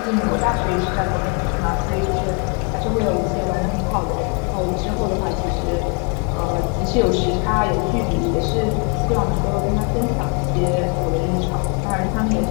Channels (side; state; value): right; quieter; 37.5 dB